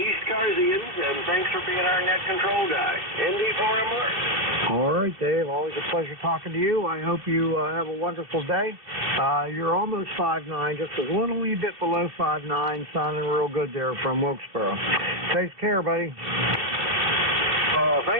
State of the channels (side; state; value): left; late; 2.7 ms